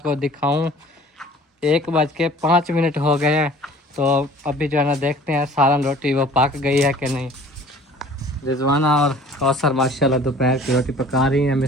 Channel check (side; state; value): both; normal; correlation 0.49